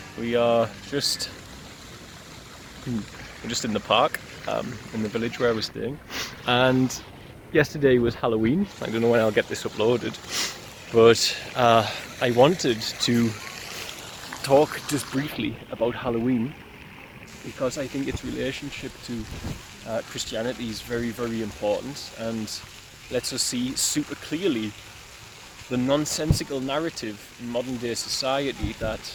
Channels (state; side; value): identical; both; correlation 1.00